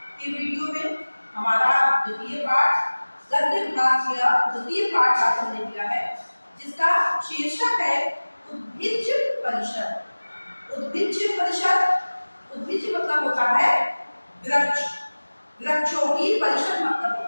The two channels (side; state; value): both; inverted; correlation -1.00